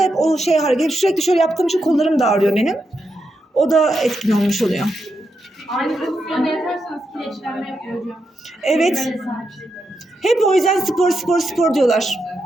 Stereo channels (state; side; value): normal; both; correlation 0.84